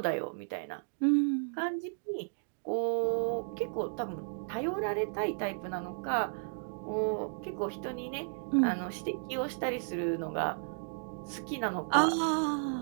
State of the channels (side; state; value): left; silent; digital silence